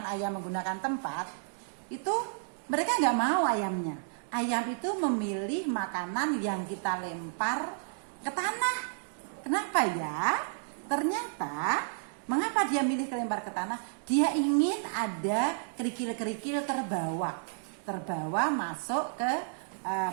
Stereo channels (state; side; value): silent; left; digital silence